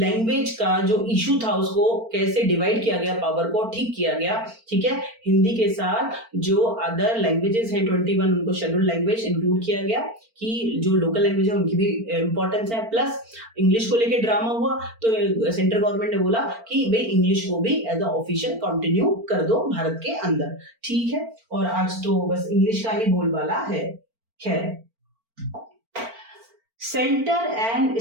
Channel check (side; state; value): left; late; 4.4 ms